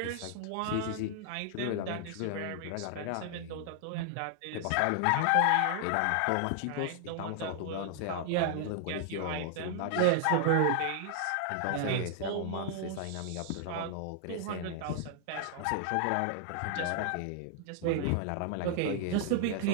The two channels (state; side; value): different; both; correlation 0.00